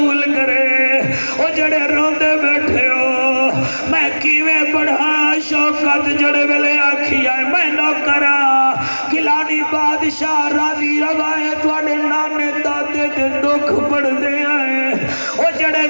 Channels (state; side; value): inverted; both; correlation -1.00